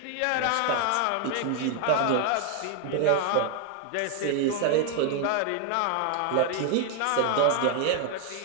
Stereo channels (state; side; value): different; both; correlation 0.00